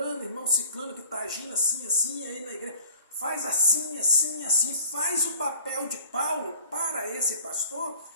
irmão Ciclano, que está agindo assim, assim, aí na igreja. Faz assim, assim, assim, faz o papel de Paulo para esse pastor,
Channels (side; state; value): both; inverted; correlation -0.48